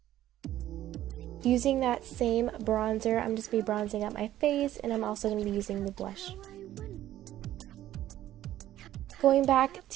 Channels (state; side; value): quieter; left; 13.3 dB